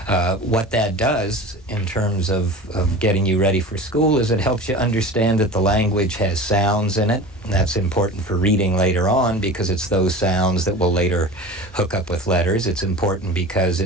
What that does in terms of getting you ready for school is it helps you understand that the language has sounds in it. And that's important for reading later on because it's those sounds that will later hook up with letters. It's important because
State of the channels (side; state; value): both; normal; correlation 0.35